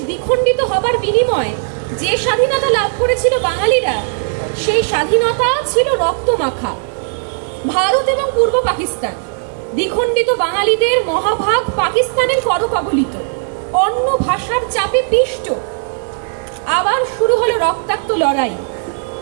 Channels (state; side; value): silent; left; digital silence